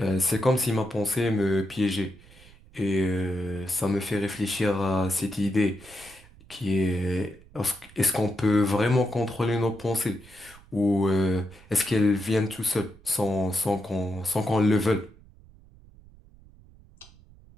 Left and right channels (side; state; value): right; noise; rumble, 24 dB below the sound